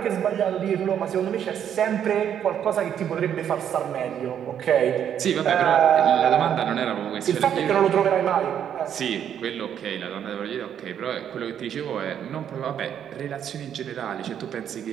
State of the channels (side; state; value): left; quieter; 9.2 dB